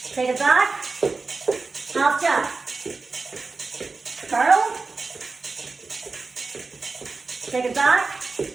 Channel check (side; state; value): left; quieter; 4.0 dB